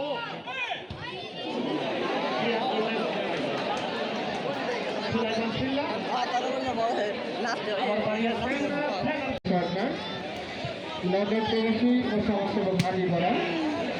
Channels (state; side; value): identical; both; correlation 1.00